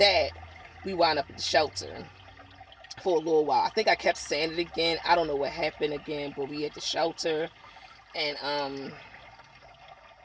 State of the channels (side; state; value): both; identical; correlation 1.00